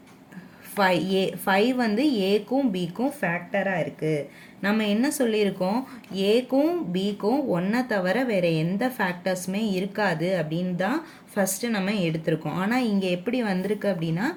5 வந்து ஏக்கும் பிக்கும் ஃபேக்டராக இருக்குது. நம்ம என்ன சொல்லியிருக்கோம், ஏக்கும் பிக்கும் ஒன்றை தவிர வேறு எந்த ஃபேக்டர்ஸுமே இருக்காது அப்படின்னு தான் ஃபஸ்ட்டு நம்ம எடுத்திருக்கோம். ஆனால் இங்கே எப்படி வந்திருக்கு அப்படின்னா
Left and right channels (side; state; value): both; identical; correlation 1.00